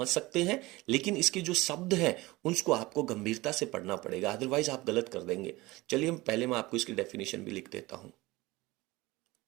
सकते हैं, लेकिन इसके जो शब्द हैं उसको आपको गंभीरता से पढ़ना पड़ेगा, अदरवाइज आप गलत कर देंगे। चलिए पहले मैं आपको इसकी डेफिनेशन भी लिख देता हूं।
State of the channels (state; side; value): quieter; left; 20.6 dB